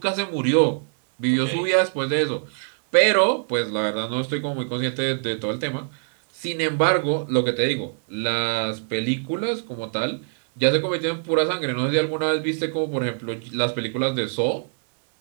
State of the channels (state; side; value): silent; left; digital silence